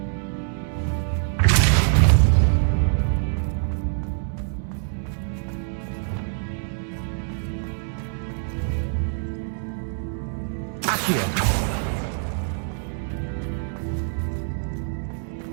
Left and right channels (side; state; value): left; silent; digital silence